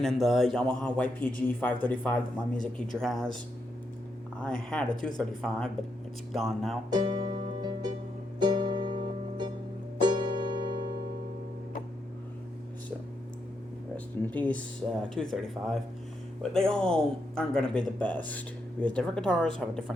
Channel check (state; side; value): normal; both; correlation 0.81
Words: and the Yamaha YPG 535 that my music teacher has. I had a 235, but it's gone now. So, rest in peace, 235. But they all aren't going to be the best, because different guitars have a